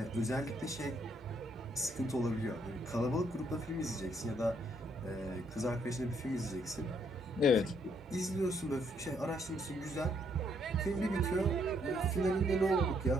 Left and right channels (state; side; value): normal; both; correlation 0.71